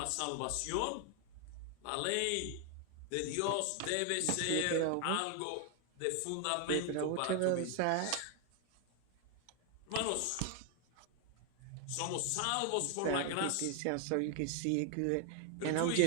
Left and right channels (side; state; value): both; different; correlation 0.00